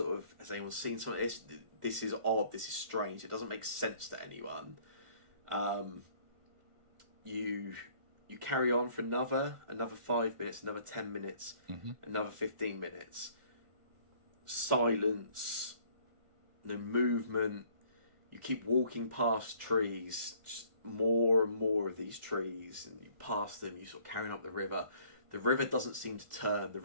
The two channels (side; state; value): left; late; 1.4 ms